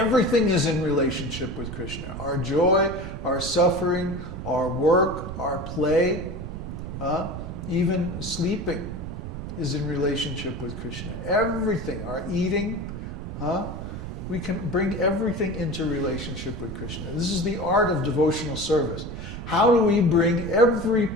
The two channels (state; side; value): noise; right; rumble, 8 dB below the sound